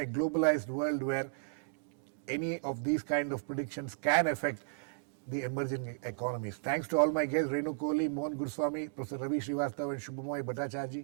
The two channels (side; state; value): left; silent; digital silence